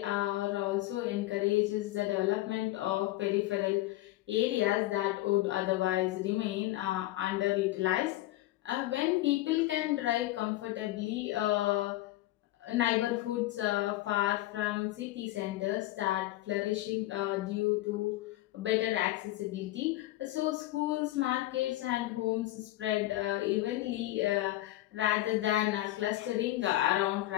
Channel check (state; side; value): quieter; right; 16.5 dB